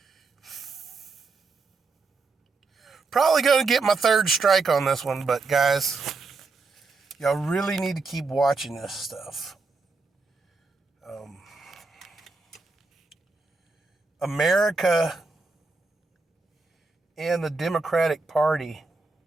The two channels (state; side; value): quieter; left; 4.0 dB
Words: probably going to get my third strike on this one, but guys, y'all really need to keep watching this stuff. America and the Democratic Party